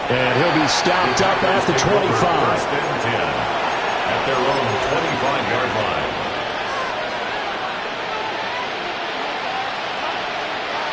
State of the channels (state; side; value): identical; both; correlation 1.00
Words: And he'll be stopped up at the 25. At their own 25-yard line.